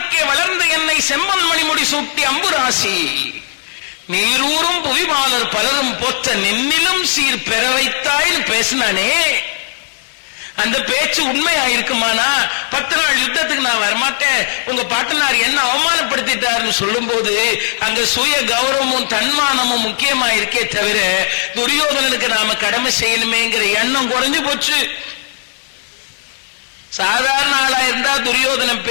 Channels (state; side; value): silent; right; digital silence